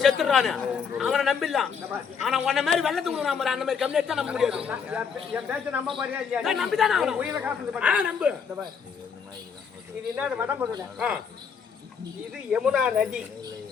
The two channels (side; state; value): right; quieter; 6.5 dB